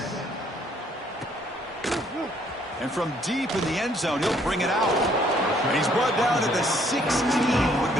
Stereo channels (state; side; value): normal; both; correlation 0.65